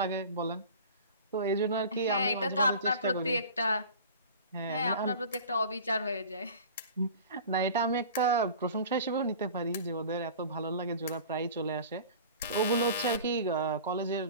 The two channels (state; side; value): inverted; both; correlation -0.40